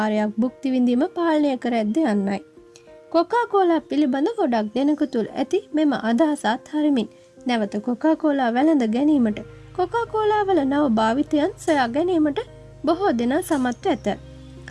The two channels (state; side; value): identical; both; correlation 1.00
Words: භුක්ති විඳීම පාලනය කර ඇද්ද යන්නයි. කොකාකෝලා පිළිබඳ ගොඩක් දෙනෙකු තුළ ඇති මෙම අදහස අත්හරිමින් නැවත කොකාකෝලා වැළඳ ගැනීමට කොකාකෝලා වල නව භාවිතයන් සොයා ගැනීමට බොහෝ දෙනා සමත්ව ඇත.